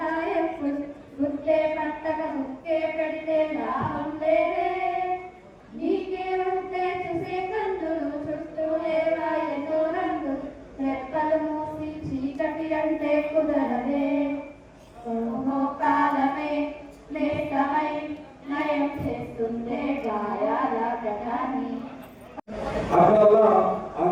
గుట్టే పట్టక ముక్కే పెడితే లాభం లేదే, నీకే ఉంటే చూసే కందులు చుట్టూ లేవా ఎన్నో రంగులు, రెక్కలు మూసి చీకటి అంటే కుదరదే, ఓహో కాలమే లేఖమై నయం చేస్తుందే గాయాల గతాన్ని. అట్లా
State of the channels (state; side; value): identical; both; correlation 1.00